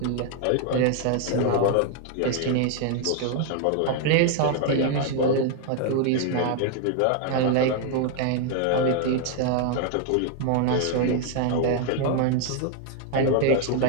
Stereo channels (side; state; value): both; different; correlation 0.00